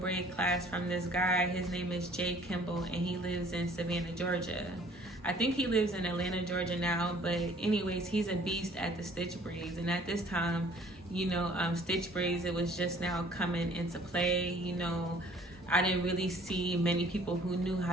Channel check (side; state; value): both; normal; correlation 0.55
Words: class from this guy. His name is Jay Kimball, and he lives in Savannah, Georgia. I think he lives in Atlanta, Georgia now, but anyways, he's a beast at the stitch braids. And at this time, stitch braids, it was just now coming into play. I didn't really see many people who knew